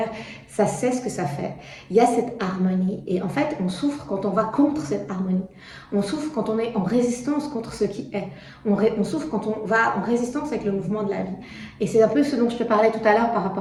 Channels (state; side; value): identical; both; correlation 1.00